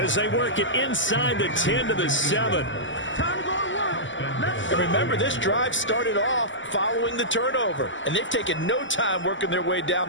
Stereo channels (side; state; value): right; late; 0.55 ms